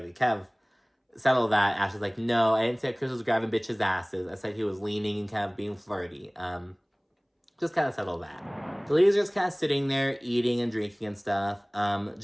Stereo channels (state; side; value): identical; both; correlation 1.00